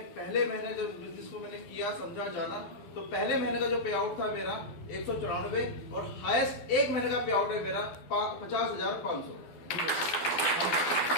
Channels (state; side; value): late; right; 12 ms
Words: पहले महीने जब बिजनेस को मैंने किया समझा जाना तो पहले महीने का जो पे आउट था मेरा 194 और हाईएस्ट एक महीने का पे आउट है मेरा 50,500।